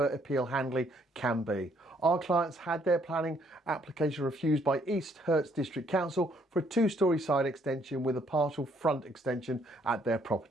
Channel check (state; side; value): normal; both; correlation 0.67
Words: appeal handling can be. Our clients had their planning application refused by East Herts District Council for a two-storey side extension with a partial front extension at their